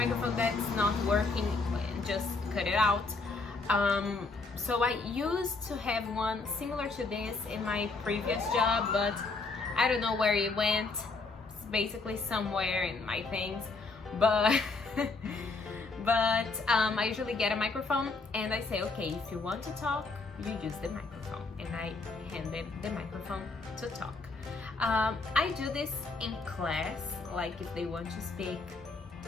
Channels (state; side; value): quieter; right; 3.8 dB